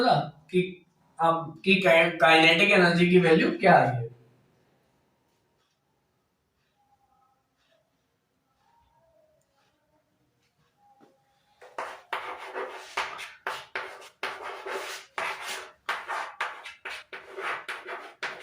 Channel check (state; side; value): identical; both; correlation 1.00